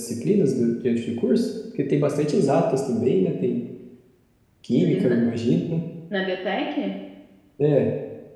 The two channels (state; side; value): identical; both; correlation 1.00